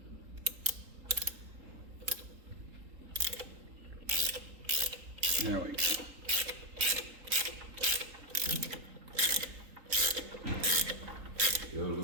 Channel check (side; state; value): left; late; 3.8 ms